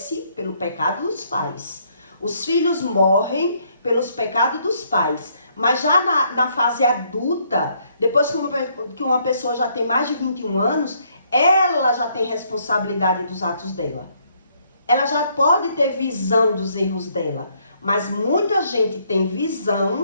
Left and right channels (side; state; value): both; inverted; correlation -0.69